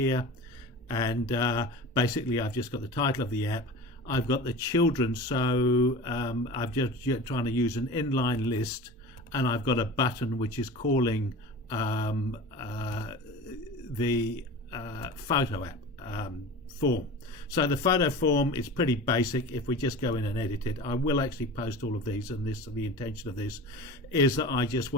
And basically I've just got the title of the app. I've got the children, so I'm just trying to use an inline list, and I've got a button which is calling the photo app form. So the photo form is pretty basic. If we just go in and edit it, I will actually post all of these, and the intention of this is that I just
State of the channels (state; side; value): normal; both; correlation 0.35